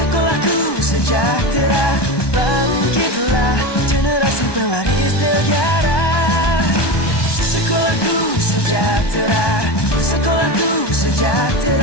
sejahtera, bangkitlah generasi pewaris negara. Sekolahku sejahtera, sekolahku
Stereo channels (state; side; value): late; right; 1.2 ms